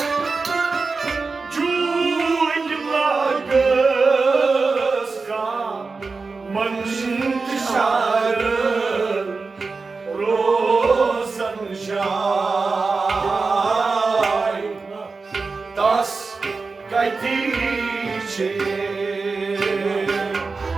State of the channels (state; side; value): quieter; left; 4.2 dB